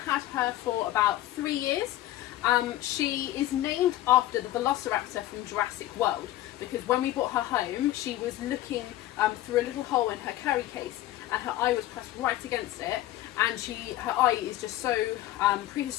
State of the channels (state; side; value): quieter; right; 14.9 dB